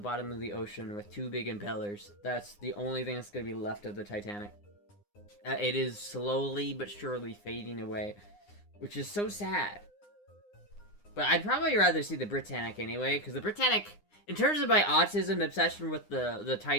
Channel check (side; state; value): right; late; 9.8 ms